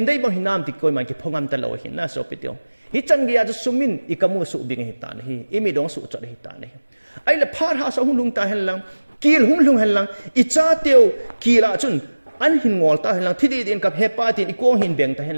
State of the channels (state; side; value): inverted; both; correlation -1.00